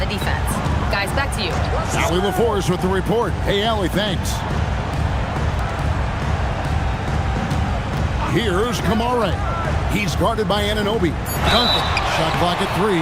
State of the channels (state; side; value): identical; both; correlation 1.00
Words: defense. Guys, back to you. Allie LaForce with the report. Hey, Allie, thanks. Here's Kamara. He's guarded by Anunoby. Duncan, shot clock at 3.